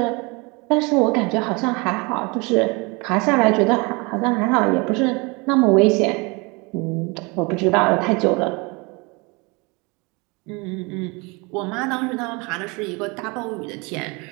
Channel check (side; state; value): left; quieter; 28.0 dB